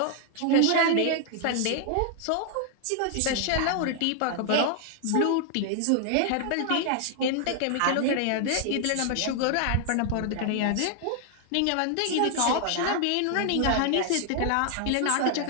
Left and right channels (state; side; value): different; both; correlation 0.00